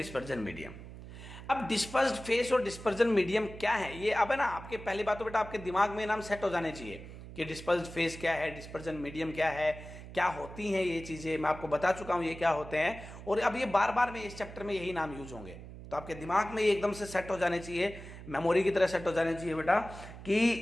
medium. अब डिस्पर्स्ड फेस और डिस्पर्जन मीडियम क्या है, ये अब है ना आपके पहली बात तो बेटा आपके दिमाग में नाम सेट हो जाने चाहिए कि डिस्पर्स्ड फेस क्या है, डिस्पर्जन मीडियम क्या है, क्या होती हैं ये चीजें। मैं आपको बता चुका हूं ये क्या होते हैं, और अब ये बार बार में इस चैप्टर में यही नाम यूज होंगे, तो आपके दिमाग में ये एकदम से सेट हो जाने चाहिए, मेमोरी की तरह सेट हो जाने चाहिए बेटा,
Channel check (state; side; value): noise; right; hum, 14 dB below the sound